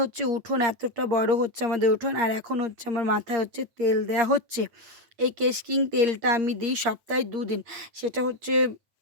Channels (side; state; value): left; late; 8.6 ms